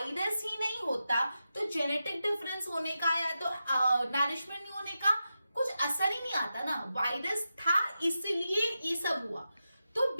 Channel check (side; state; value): both; inverted; correlation -0.90